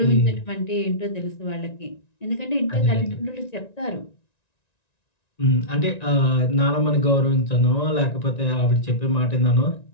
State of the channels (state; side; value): late; right; 1.9 ms